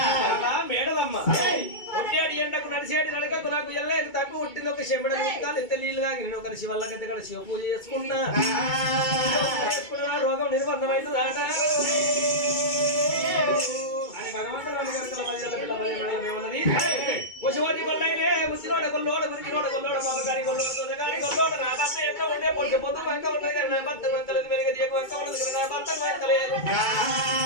మేడలమ్మ ఒట్టేడి ఎండకు నడిచేటి నడకకు నాకు ఎల్లేదు తప్పి పుట్టింది ఒక చెంబడ కాలు ఎంత నీళ్ళు తాగి నేను ఒక శివల్లకైతే ఇక్కడ శివ పూజ చేసుకున్నా రోగం నిర్బంధమైందాట అని భగవంతుడు ఉన్నది పశువాది కొల్లైలే ముసిరోడ కొల్లోడ మురికిరోడ కొల్లోడ పాపగారి కొల్లోడ తొదగారి కొల్లోడ నా భర్త ఎట్లా ఉండే పొట్టి పొద్దు వంక ఉన్నది నా భర్త వంకలేదు మెరుగ దీప వంక ఉన్నది నా భర్త వంకలేదు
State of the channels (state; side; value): late; right; 2.2 ms